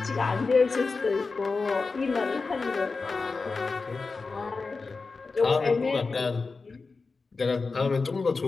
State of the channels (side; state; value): right; quieter; 4.2 dB